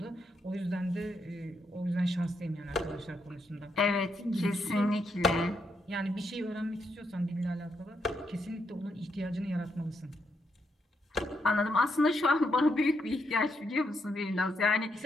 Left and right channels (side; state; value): both; normal; correlation 0.79